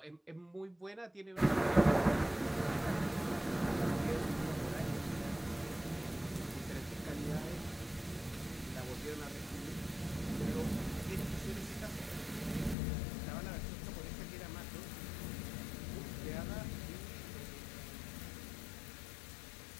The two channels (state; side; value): drops out; right; at 12.8 s